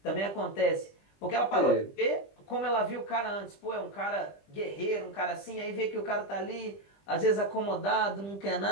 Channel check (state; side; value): late; right; 20 ms